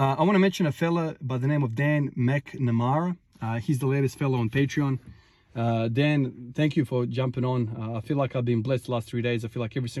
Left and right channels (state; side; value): identical; both; correlation 1.00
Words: I want to mention a fella by the name of Dan McNamara. He's the latest fellow on Patreon. Dan, thank you for jumping on. I feel like I've been blessed the last 3 days. I feel like every